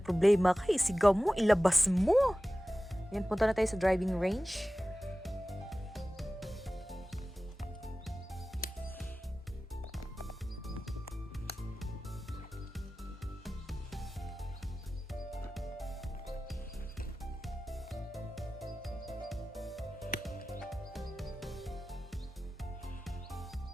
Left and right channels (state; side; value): normal; both; correlation 0.96